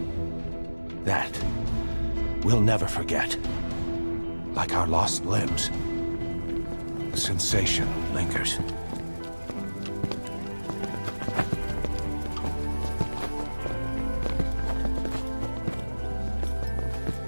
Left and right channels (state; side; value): inverted; both; correlation -1.00